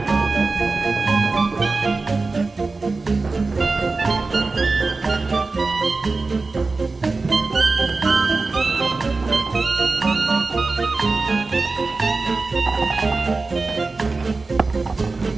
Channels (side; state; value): left; quieter; 3.8 dB